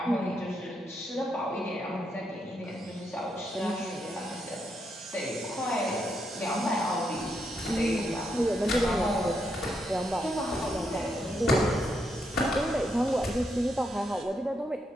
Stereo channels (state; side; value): normal; both; correlation 0.80